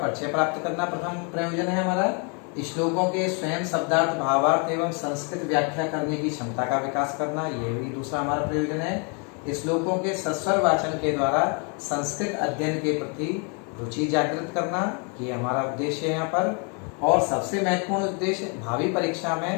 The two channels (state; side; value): quieter; right; 36.5 dB